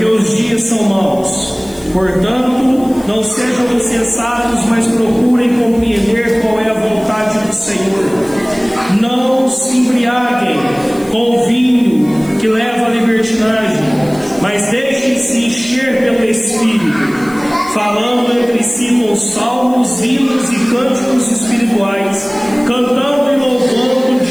os dias são maus. Portanto, não sejam insensatos, mas procurem compreender qual é a vontade do Senhor. Não se embriaguem com o vinho que leva à libertinagem, mas deixem-se encher pelo Espírito, falando entre si com salmos, hinos e cânticos espirituais, cantando e louvando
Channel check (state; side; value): noise; left; hiss, 23 dB below the sound